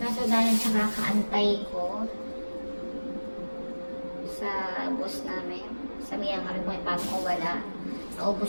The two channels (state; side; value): inverted; both; correlation -1.00